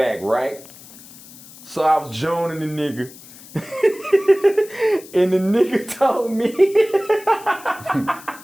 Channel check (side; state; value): left; noise; hiss, 19 dB below the sound